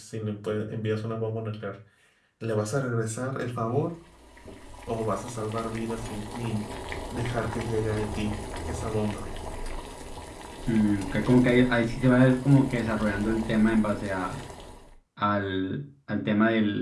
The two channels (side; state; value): both; identical; correlation 1.00